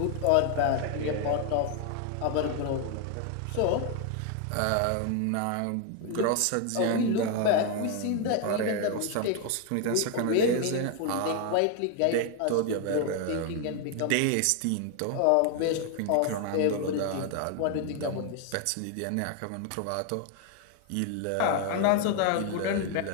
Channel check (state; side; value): different; both; correlation 0.01